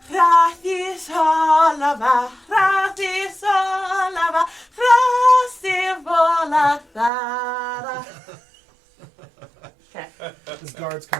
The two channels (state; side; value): drops out; left; at 7.1 s